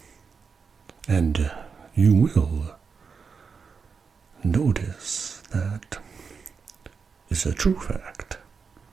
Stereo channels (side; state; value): left; quieter; 5.5 dB